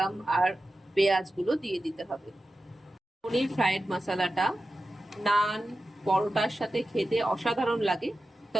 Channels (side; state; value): both; normal; correlation 0.93